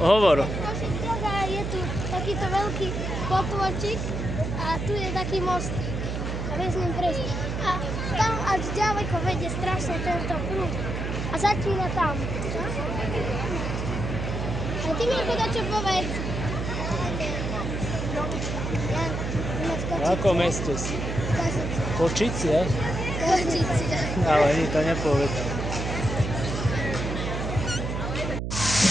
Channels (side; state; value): right; noise; hum, 3 dB below the sound